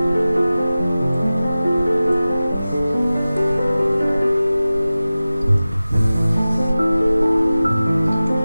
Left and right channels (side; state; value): both; inverted; correlation -0.96